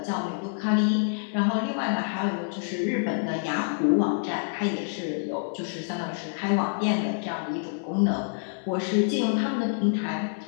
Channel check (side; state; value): right; silent; 60 dB below the other